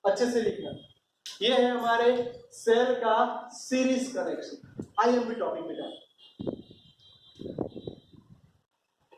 अच्छे से लिखना। ये है हमारे सेल का सीरीज कनेक्शन। आईएमपी टॉपिक में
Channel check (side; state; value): both; identical; correlation 1.00